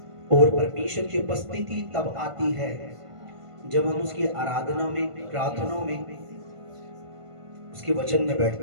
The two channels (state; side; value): late; left; 1.5 ms